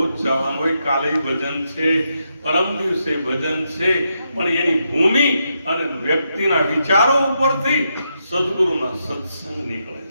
જવાનું હોય. કાલે ભજન છે, પરમ દિવસે ભજન છે, પણ એની ભૂમિ અને વ્યક્તિના વિચારો ઉપરથી સદગુરુના સત્સંગ નીકળે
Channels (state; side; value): inverted; both; correlation -0.82